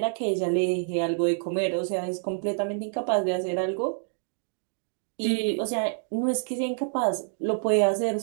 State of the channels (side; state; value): left; silent; digital silence